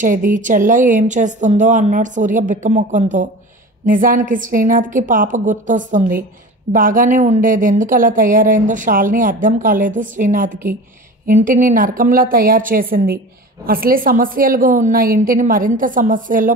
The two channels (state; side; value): normal; both; correlation 0.35